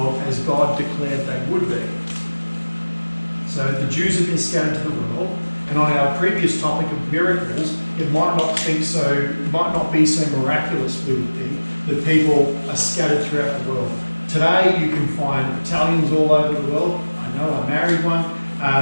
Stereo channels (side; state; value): both; inverted; correlation -1.00